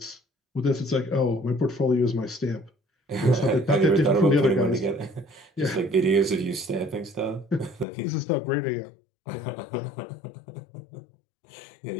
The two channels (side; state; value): right; drops out; at 7.9 s